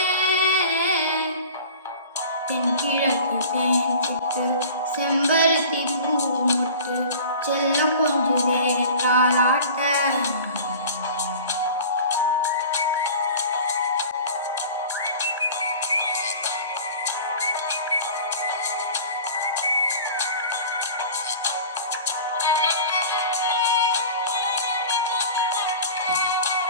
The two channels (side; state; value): both; inverted; correlation -0.40